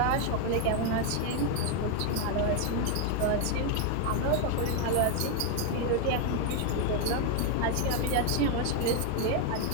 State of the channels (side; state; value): both; different; correlation 0.01